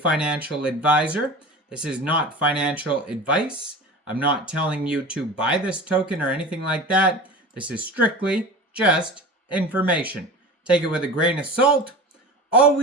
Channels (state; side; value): normal; both; correlation 0.34